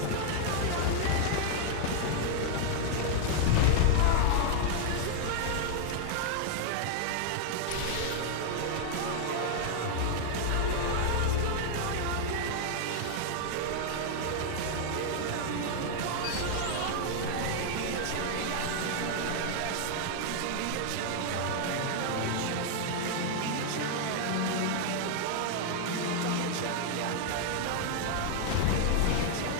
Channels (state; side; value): different; both; correlation 0.00